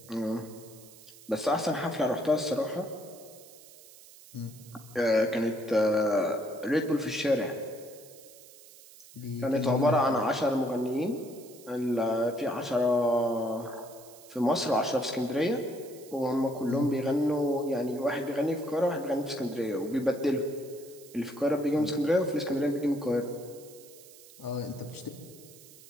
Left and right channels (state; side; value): noise; right; hiss, 21 dB below the sound